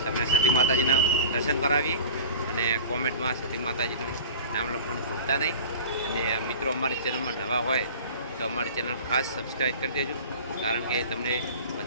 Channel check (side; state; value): both; inverted; correlation -0.38